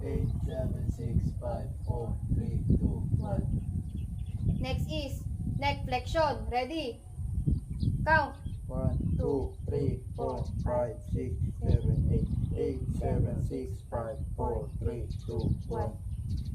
8, 7, 6, 5, 4, 3, 2, 1. Next is neck flexion. Ready? Count. 1, 2, 3, 4, 5, 6, 7, 8, 7, 6, 5, 4, 3, 2, 1.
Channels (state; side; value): identical; both; correlation 1.00